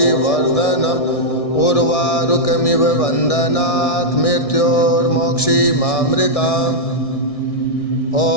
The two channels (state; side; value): late; right; 1.6 ms